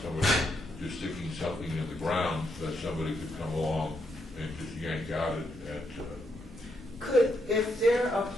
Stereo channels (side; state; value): both; normal; correlation 0.79